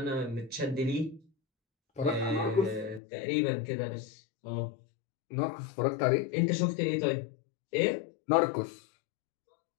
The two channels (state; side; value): drops out; right; at 3.0 s